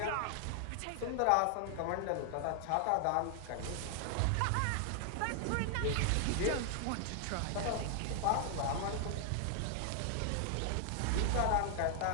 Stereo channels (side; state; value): both; different; correlation 0.00